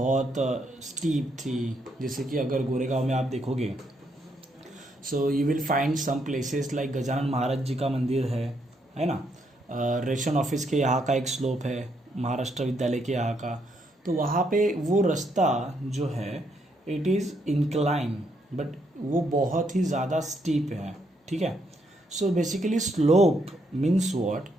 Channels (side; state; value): both; normal; correlation 0.75